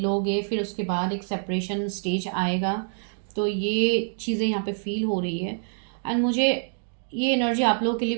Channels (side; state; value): left; silent; digital silence